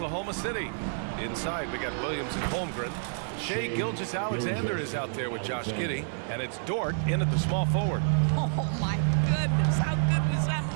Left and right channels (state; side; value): silent; left; digital silence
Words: City. Inside, we got Williams and Holmgren. Shai Gilgeous-Alexander is out there with Josh Giddey. And it's Dort in at the small forward. Oh, my goodness. How good was that